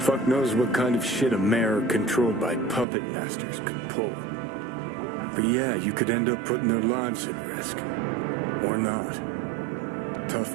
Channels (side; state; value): left; drops out; at 2.9 s